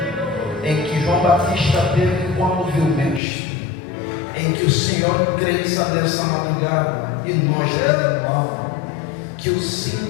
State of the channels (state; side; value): drops out; right; at 3.2 s